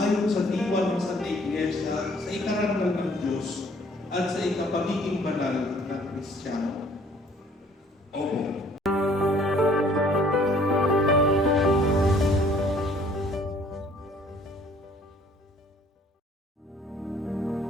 sa diwa ng Santa Iglesia sa ikarangal ng Diyos at sa ikapagiging banal ng Kristiyano? Opo.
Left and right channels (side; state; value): both; normal; correlation 0.58